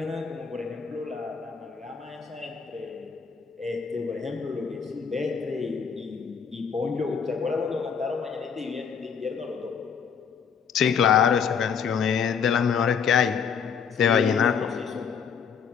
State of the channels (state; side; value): quieter; right; 6.7 dB